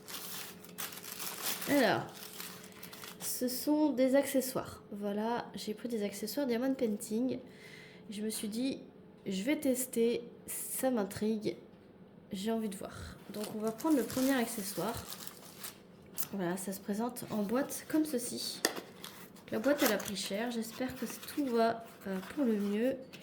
Alors, ce sont des accessoires. Voilà, j'ai pris des accessoires Diamond Painting. Je me suis dit, je vais tester, ça m'intrigue, j'ai envie de voir. Donc on va prendre le premier accessoire. Voilà, ça se présente en boîte comme ceci. La boîte elle a pris cher, j'espère que tout va pour le mieux.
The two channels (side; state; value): both; identical; correlation 1.00